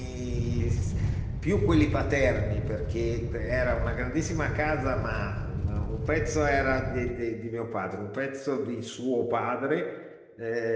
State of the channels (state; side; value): identical; both; correlation 1.00